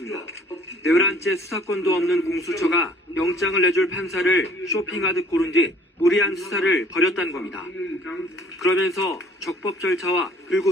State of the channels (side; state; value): both; normal; correlation 0.54